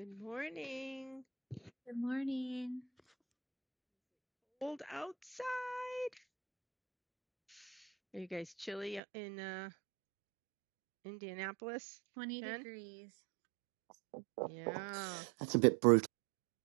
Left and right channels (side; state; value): left; drops out; at 9.0 s